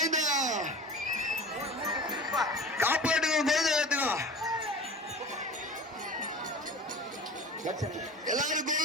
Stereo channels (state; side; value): normal; both; correlation 0.37